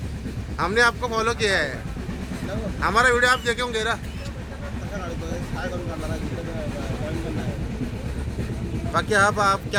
हमने आपको फॉलो किया है, हमारा वीडियो आप देखे होंगे ना? बाकी आप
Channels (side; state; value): both; identical; correlation 1.00